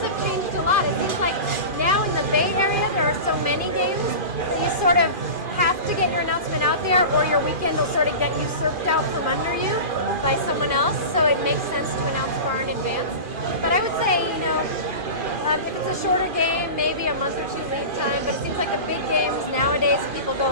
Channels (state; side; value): late; left; 2.4 ms